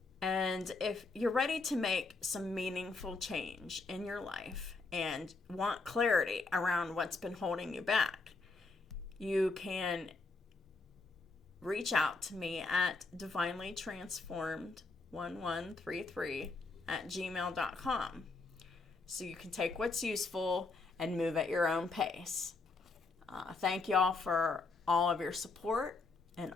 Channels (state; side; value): quieter; right; 3.7 dB